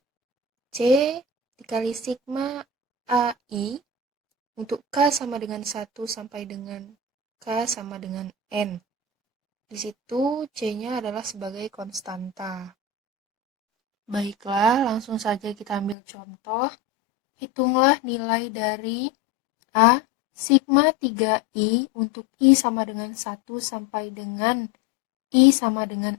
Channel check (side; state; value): right; drops out; at 16.0 s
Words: C dikali sigma AI untuk K sama dengan 1 sampai dengan K sama dengan N. Di situ C-nya adalah sebagai konstanta. Baiklah, langsung saja kita ambil contoh. Hitunglah nilai dari A sigma 3I untuk I sama dengan 1 sampai dengan I sama